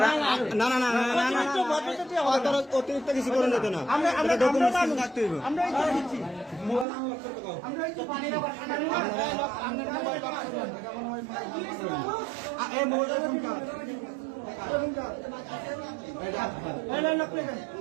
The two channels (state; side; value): drops out; left; at 6.9 s